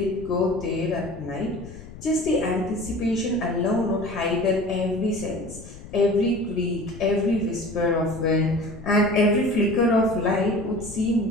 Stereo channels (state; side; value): noise; left; rumble, 15 dB below the sound